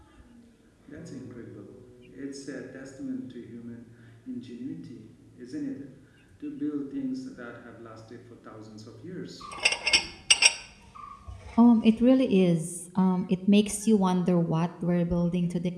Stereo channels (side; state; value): both; identical; correlation 1.00